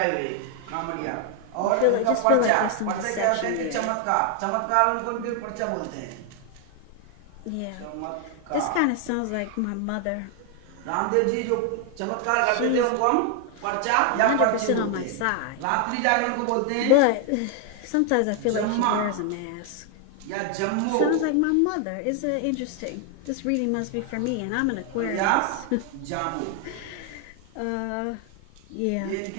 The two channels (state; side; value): different; both; correlation 0.00